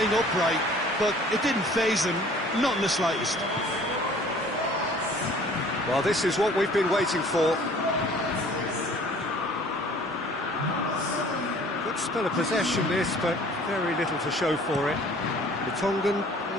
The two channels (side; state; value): both; normal; correlation 0.51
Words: upright, but it didn't faze him, not in the slightest. Well, this is what we've been waiting for. Good spell of possession, this, but very little to show for it. The Tongan